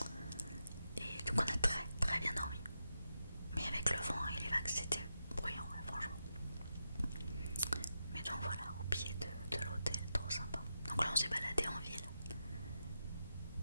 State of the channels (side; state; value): both; inverted; correlation -0.87